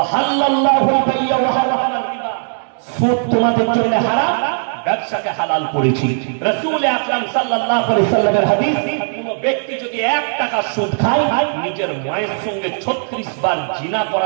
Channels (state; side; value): silent; left; digital silence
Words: বাইয়া ওয়া হারামাল রিবা, সুদ তোমাদের জন্য হারাম, ব্যবসাকে হালাল করেছি। রাসূল আকরাম সাল্লাল্লাহু আলাইহি সাল্লামের হাদিস, কোন ব্যক্তি যদি 1 টাকা সুদ খায়, নিজের মায়ের সঙ্গে 36 বার জিনা